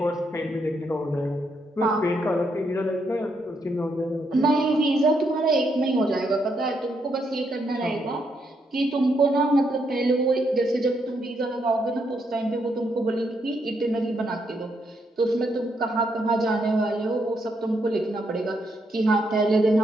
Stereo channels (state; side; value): normal; both; correlation 0.77